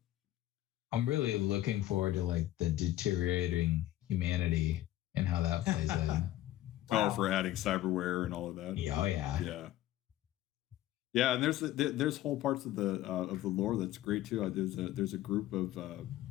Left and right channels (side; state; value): right; quieter; 14.4 dB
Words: I'm really looking forward to like the deteriorating humanity and how that plays in. Wow. Oh, for adding cyberware and all of that. Oh yeah. Yeah, and there's whole parts of the lore that's great too. There's a group of